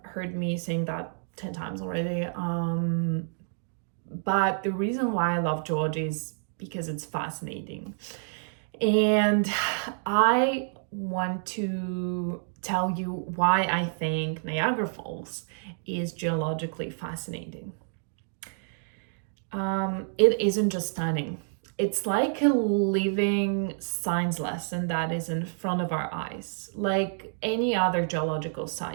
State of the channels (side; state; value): left; silent; digital silence